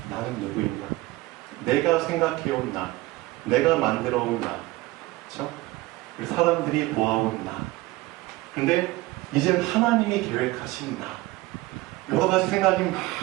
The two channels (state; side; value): quieter; left; 19.7 dB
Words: 나는 누구인가? 내가 생각해온 나, 내가 만들어온 나, 그렇죠? 사람들이 보아온 나. 근데 이젠 하나님이 계획하신 나. 여러 가지 생각이 막